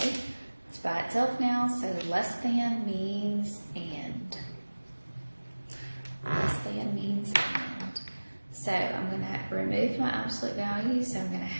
it's by itself now, so less than means and. Less than means and. So I'm going to remove my absolute value, so I'm going to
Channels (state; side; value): inverted; both; correlation -1.00